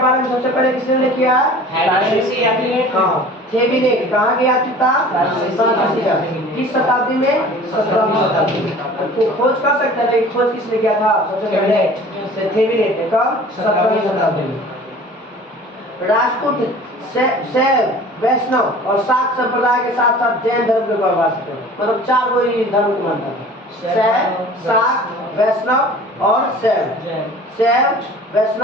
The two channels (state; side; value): normal; both; correlation 0.44